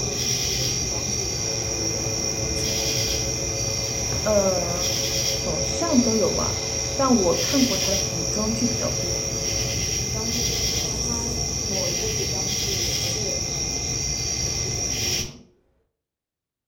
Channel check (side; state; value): both; identical; correlation 1.00